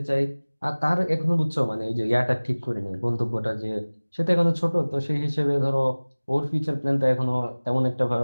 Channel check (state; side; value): inverted; both; correlation -1.00